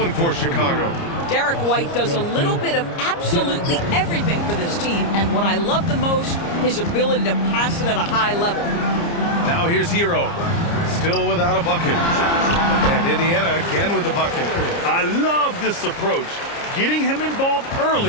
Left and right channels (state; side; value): late; right; 29 ms